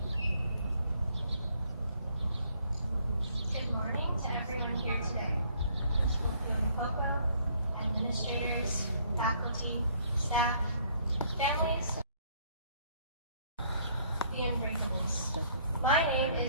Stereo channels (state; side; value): inverted; both; correlation -0.63